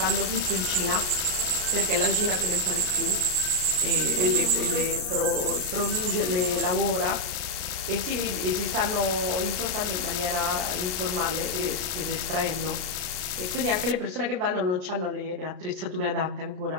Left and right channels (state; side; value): late; left; 33 ms